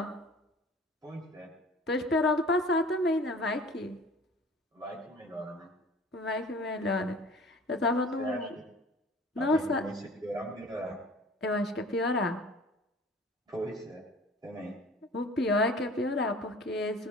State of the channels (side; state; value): both; normal; correlation 0.46